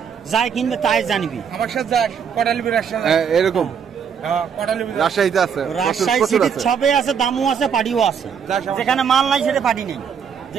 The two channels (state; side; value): quieter; left; 7.2 dB